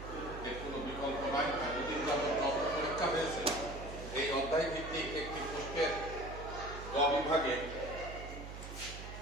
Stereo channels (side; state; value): right; noise; hum, 10 dB below the sound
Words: এর কোনো বিকল্প নাই। দুদিন যাবত যত পরীক্ষা হয়েছে এই অধ্যায় ভিত্তিক একটি প্রশ্নের গ বিভাগে